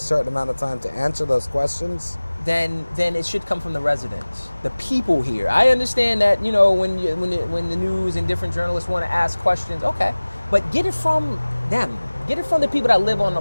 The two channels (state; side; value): inverted; both; correlation -1.00